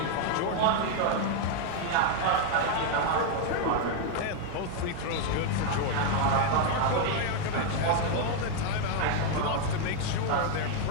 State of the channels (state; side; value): different; both; correlation 0.00